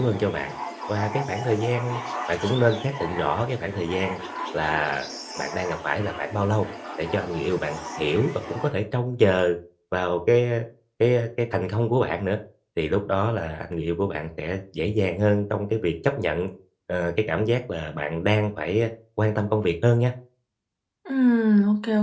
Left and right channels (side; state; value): both; identical; correlation 1.00